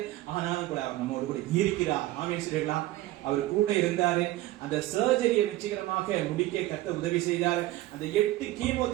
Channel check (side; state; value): left; quieter; 16.5 dB